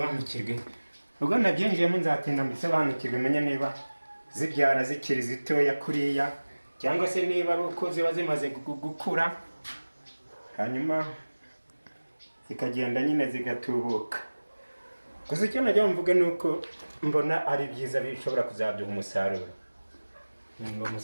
Ubwo nabyinjiyemo nzatinda mbisobanukirwe, menye niba zibyara zikiri zitoya kuriya cyangwa se niba ari uko ziba zimaze gukura hanyuma zikagenda nyine zigatubuka. Gusa icyo najya mvuga ni uko mbona ari byiza, bishobora kuzaduha umusaruro. Ngo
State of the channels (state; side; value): inverted; both; correlation -1.00